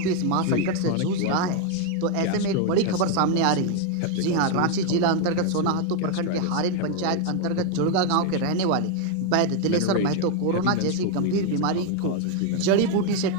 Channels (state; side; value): different; both; correlation 0.01